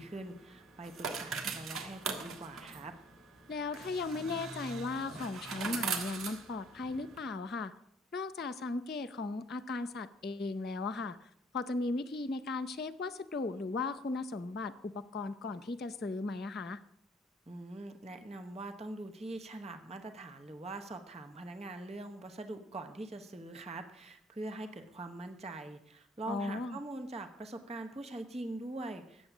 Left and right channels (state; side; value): normal; both; correlation 0.59